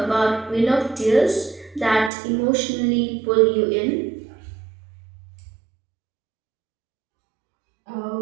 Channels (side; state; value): left; drops out; at 2.1 s